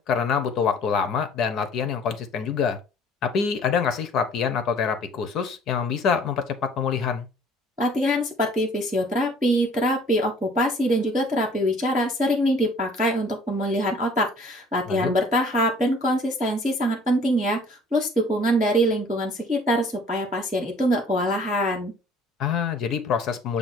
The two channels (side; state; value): both; normal; correlation 0.53